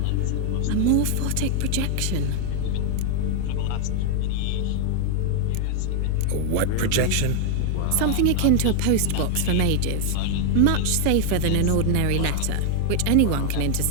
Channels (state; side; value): different; both; correlation 0.00